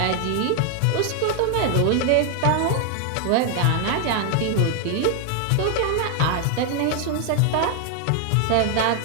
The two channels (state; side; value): different; both; correlation 0.00